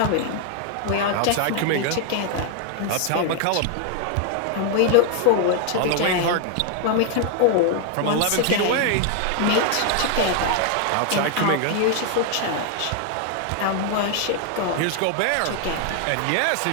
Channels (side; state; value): both; different; correlation 0.00